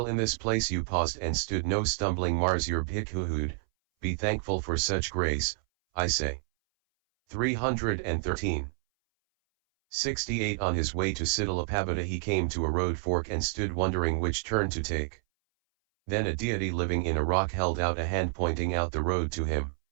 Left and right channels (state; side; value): silent; left; 59 dB below the other